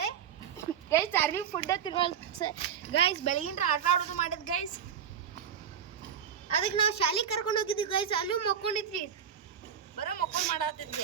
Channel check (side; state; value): left; quieter; 8.1 dB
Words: ಗೈಸ್ ಚಾರ್ಲಿ ಫುಡ್ ತಿನ್ನೋಲ್ ಗೈಸ್. ಬೆಳಗಿನ ಆಟ ಆಡೋದು ಮಾಡಿದ್ ಗೈಸ್. ಅದಕ್ಕೆ ನಾವು ಶಾಲೆಗೆ ಕರ್ಕೊಂಡು ಹೋಗಿದ್ವಿ ಗೈಸ್. ಅಲ್ಲೂ ಮಕ್ಕೊಂಡಿದ್ರಿ. ಬರೀ ಮಕ್ಕಳು ಮಾಡತ್ತೈತಿ